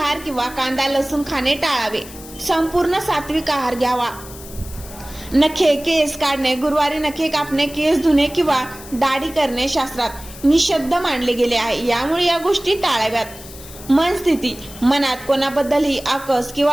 किंवा कांदा लसूण खाणे टाळावे. संपूर्ण सात्विक आहार घ्यावा. नखे केस काढणे. गुरुवारी नखे कापणे, केस धुणे किंवा दाढी करणे शास्त्रात निषिद्ध मानले गेले आहे. यामुळे या गोष्टी टाळाव्यात. मन स्थिती. मनात कोणाबद्दलही आकस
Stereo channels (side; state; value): left; noise; hiss, 17 dB below the sound